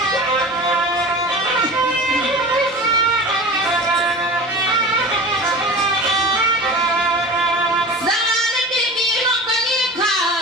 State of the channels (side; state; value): both; normal; correlation 0.34